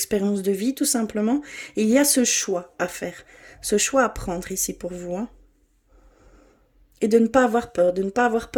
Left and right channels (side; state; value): both; identical; correlation 1.00